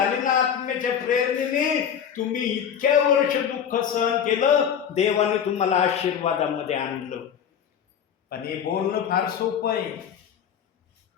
ना आत्म्याच्या प्रेरणेने, तुम्ही इतक्या वर्ष दुःख सहन केलं, देवाने तुम्हाला आशीर्वादामध्ये आणलं. पण हे बोलणं फार सोपं आहे,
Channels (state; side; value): quieter; right; 8.2 dB